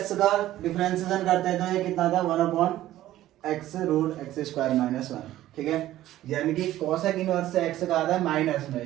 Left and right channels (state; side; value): quieter; left; 14.2 dB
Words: का डिफरेंशिएशन करते हैं तो ये कितना था, 1/x root x square minus 1। ठीक है, यानी कि कॉसेक इनवर्स एक्स का आता है माइनस में,